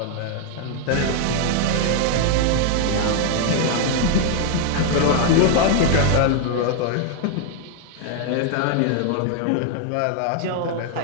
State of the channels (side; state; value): both; different; correlation 0.00